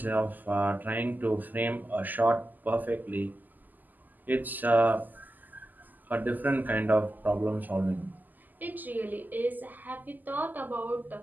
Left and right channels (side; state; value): left; late; 0.085 ms